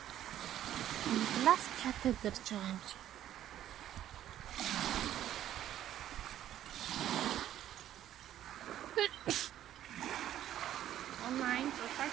Глас катедр ч байгаа юм чи. Онлайн зураг.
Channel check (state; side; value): quieter; left; 11.9 dB